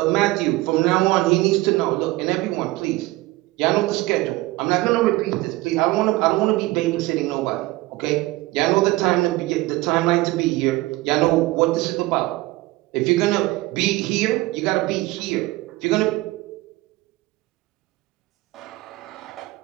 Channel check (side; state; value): left; quieter; 19.7 dB